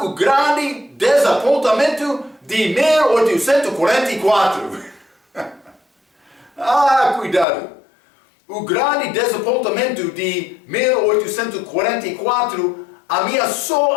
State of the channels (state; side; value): drops out; right; at 7.5 s